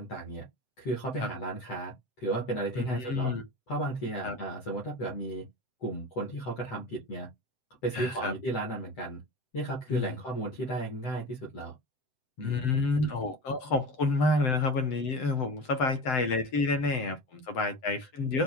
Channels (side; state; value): right; late; 7.8 ms